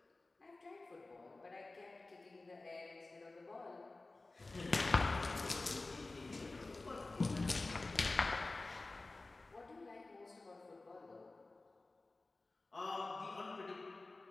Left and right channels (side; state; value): right; quieter; 3.3 dB